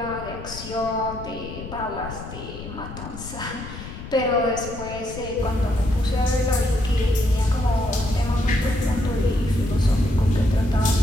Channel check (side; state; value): left; noise; rumble, 11 dB below the sound